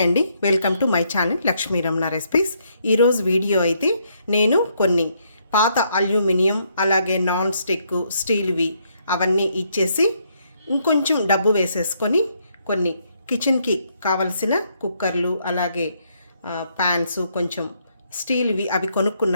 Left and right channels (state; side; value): inverted; both; correlation -0.73